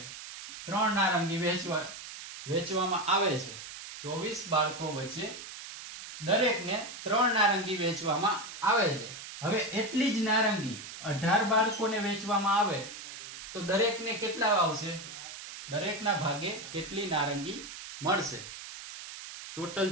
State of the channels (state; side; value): noise; right; hiss, 11 dB below the sound